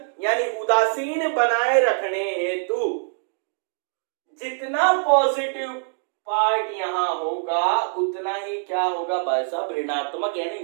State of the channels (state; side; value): silent; left; digital silence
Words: यानी उदासीन बनाए रखने हेतु जितना पॉजिटिव पार्ट यहां होगा, उतना ही क्या होगा भाई साहब, ऋणात्मक यानी